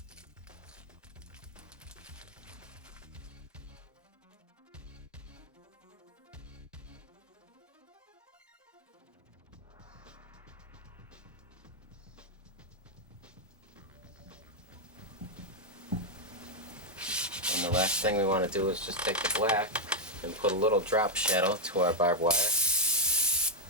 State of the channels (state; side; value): normal; both; correlation 0.01